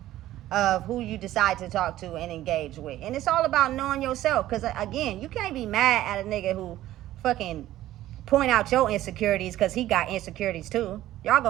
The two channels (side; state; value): left; quieter; 14.3 dB